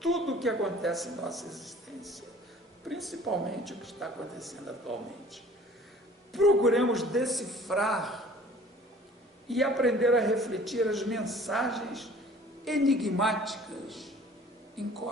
o que acontece em nossa existência, principalmente o que está acontecendo atualmente. Procuremos decifrar e aprender a refletir as mensagens enigmáticas em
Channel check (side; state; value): both; normal; correlation 0.50